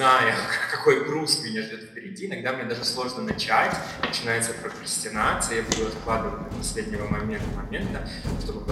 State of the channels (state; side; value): identical; both; correlation 1.00